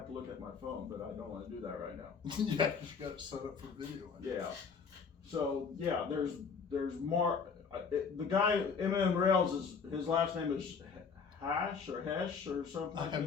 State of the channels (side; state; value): right; quieter; 5.7 dB